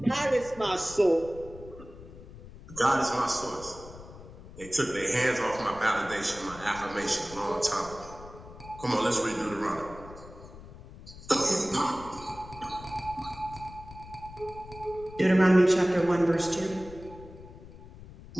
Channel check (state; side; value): noise; left; rumble, 17 dB below the sound